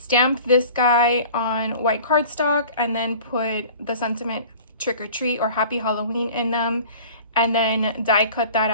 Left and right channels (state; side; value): inverted; both; correlation -0.43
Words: this guy on white cardstock and then put the sentiment trick or treat or happy Halloween in them, and then die cut that